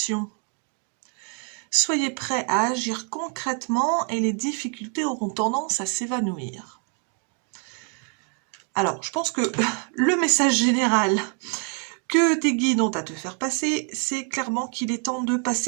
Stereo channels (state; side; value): quieter; left; 38.8 dB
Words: Soyez prêts à agir concrètement et les difficultés auront tendance à s'évanouir. Alors, je pense que le message général que tes guides ont à te faire passer, c'est clairement qu'il est temps de